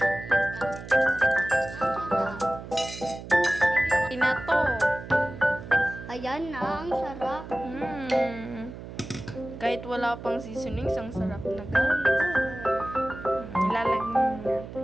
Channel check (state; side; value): noise; right; hum, 12 dB below the sound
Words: Na to. Ayan na, ang sarap. Kahit wala pang seasonings, ang sarap na guys. Ilalagyan natin.